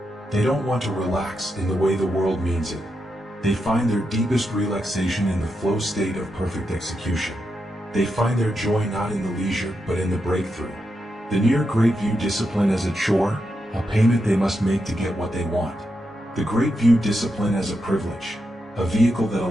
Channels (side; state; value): both; normal; correlation 0.85